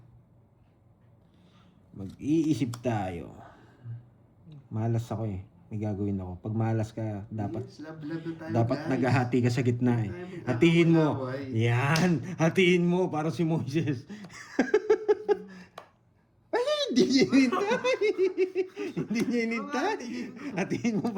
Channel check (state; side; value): identical; both; correlation 1.00